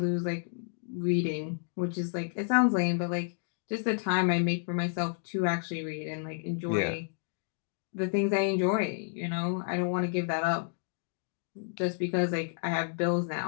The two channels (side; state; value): right; silent; digital silence